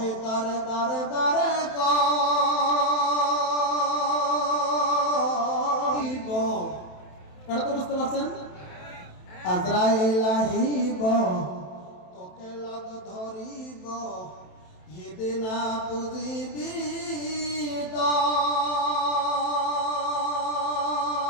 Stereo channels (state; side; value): late; right; 27 ms